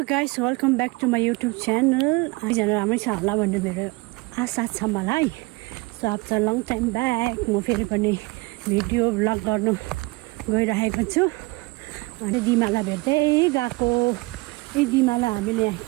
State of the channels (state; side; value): quieter; left; 24.1 dB